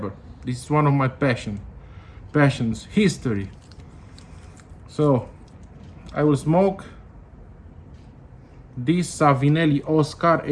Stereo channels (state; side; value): identical; both; correlation 1.00